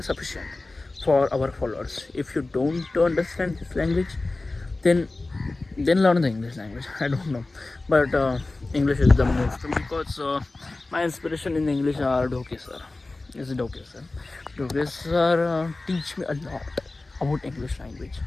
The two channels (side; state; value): right; quieter; 3.2 dB